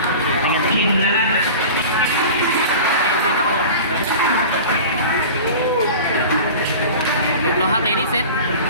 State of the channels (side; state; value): both; inverted; correlation -0.36